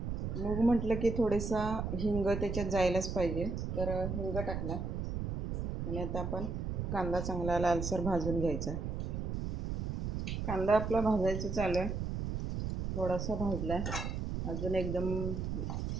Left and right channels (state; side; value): noise; right; rumble, 2 dB below the sound